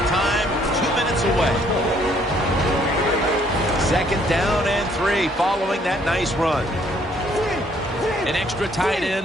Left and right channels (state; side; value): normal; both; correlation 0.65